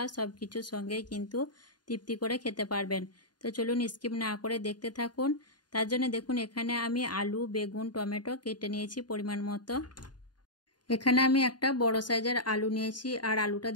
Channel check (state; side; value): late; right; 0.70 ms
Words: সব কিছুর সঙ্গেই কিন্তু তৃপ্তি করে খেতে পারবেন। তো চলুন স্কিপ না করে দেখতে থাকুন। তার জন্য দেখুন এখানে আমি আলু, বেগুন, টমেটো কেটে নিয়েছি পরিমাণ মতো। এখানে আমি একটা বড় সাইজের আলু নিয়েছি, আর আলুটা